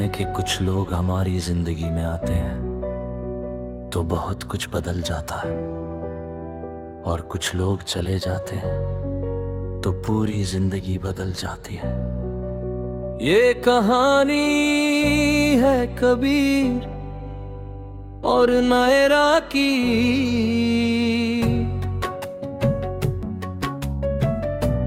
कि कुछ लोग हमारी जिंदगी में आते हैं तो बहुत कुछ बदल जाता है, और कुछ लोग चले जाते हैं तो पूरी जिंदगी बदल जाती है। ये कहानी है कबीर और नायरा की।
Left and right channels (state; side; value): identical; both; correlation 1.00